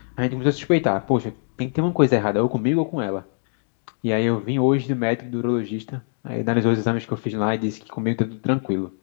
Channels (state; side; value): silent; right; 60 dB below the other